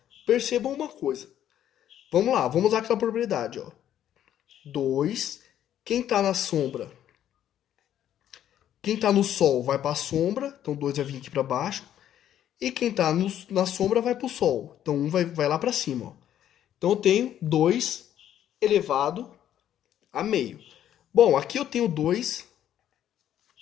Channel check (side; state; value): right; quieter; 10.9 dB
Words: percebam uma coisa. Vamos lá, vamos usar aquela propriedade, ó. 2, quem está na sombra, quem está no sol vai para a sombra, então 2 vai vir aqui para baixo. E quem está na sombra vai para o sol, então 1 vai lá para cima. Ó. Então eu tenho 2 elevado a meio. Bom, aqui eu tenho 2